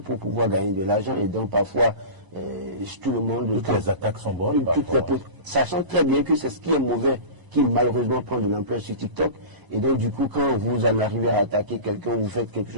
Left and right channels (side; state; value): left; late; 1.0 ms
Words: pouvoir gagner de l'argent et donc parfois tout le monde... Toutes les attaques sont bonnes. Sachant très bien que c'est ce qui est mauvais qui malheureusement prend de l'ampleur sur TikTok. Et donc du coup, quand vous en arrivez à attaquer quelqu'un, vous faites quelque